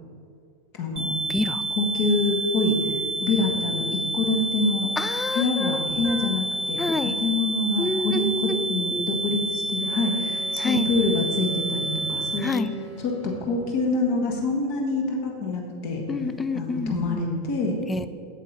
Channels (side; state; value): both; normal; correlation 0.37